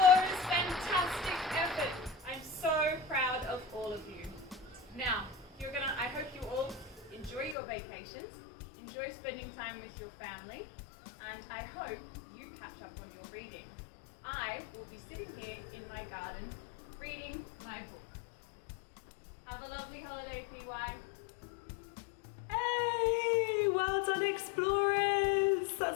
fantastic effort. I'm so proud of all of you. Now, I hope you all enjoy your vacations, enjoy spending time with your family, and I hope you catch up on your reading. I will be sitting here in my garden reading my book. Have a lovely holiday, PY. Hey! Well done, Explorers!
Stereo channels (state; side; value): drops out; right; at 7.6 s